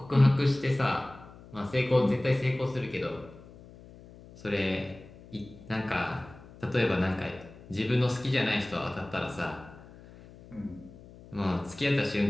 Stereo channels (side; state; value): left; noise; hum, 20 dB below the sound